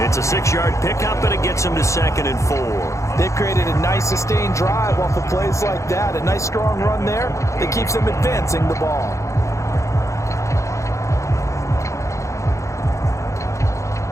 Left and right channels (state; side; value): late; right; 0.15 ms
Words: It's a 6-yard pickup, and it gets him to 2nd and 4. They've created a nice sustained drive off of plays like that. A nice strong run there that keeps them advancing the ball.